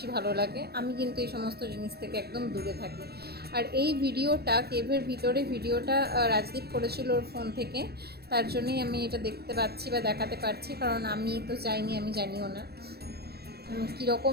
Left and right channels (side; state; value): left; late; 0.47 ms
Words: ভালো লাগে, আমি কিন্তু এই সমস্ত জিনিস থেকে একদম দূরে থাকি। আর এই ভিডিওটা, কেভের ভিতরে ভিডিওটা রাজদীপ করেছিল ওর ফোন থেকে, তার জন্যই আমি এটা দেখতে পাচ্ছি বা দেখাতে পারছি, কারণ আমি তো যাইনি, আমি জানিও না